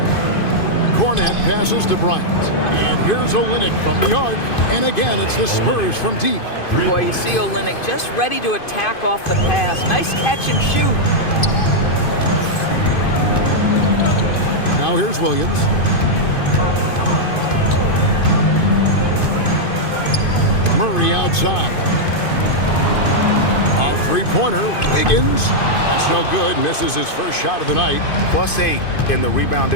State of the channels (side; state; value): right; late; 2.5 ms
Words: Cornet passes to Bryant. And here's Olynyk from the arc. And again, it's the Spurs from deep. Boy, you see Olynyk just ready to attack off the pass. Nice catch and shoot. Now here's Williams. Murray outside. A three-pointer. Wiggins. That's no good. Misses his first shot of the night. +8 in the rebound